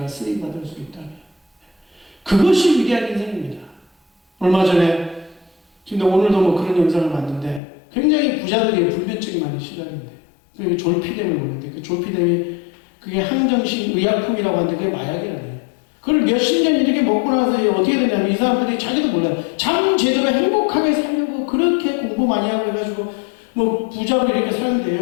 쓰임받을 수 있다면 그것이 위대한 인생입니다. 얼마 전에 근데 오늘도 뭐 그런 영상을 봤는데 굉장히 부자들이 불면증이 많이 시달린대. 그게 졸피뎀을 먹는데 그 졸피뎀이 그게 항정식 의약품이라고 하는데 그게 마약이라네요. 그걸 몇십 년 이렇게 먹고 나서 어떻게 되냐면 이 사람들이 자기도 몰라요. 잠 제대로 행복하게 살려고 그렇게 공부 많이 하고 해가지고 뭐 부자로 이렇게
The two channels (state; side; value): drops out; right; at 7.6 s